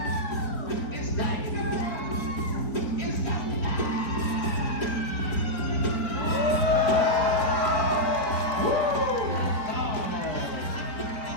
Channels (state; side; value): late; right; 4.2 ms